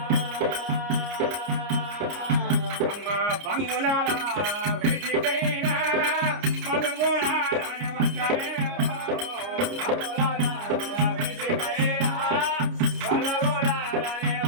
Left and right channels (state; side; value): late; left; 29 ms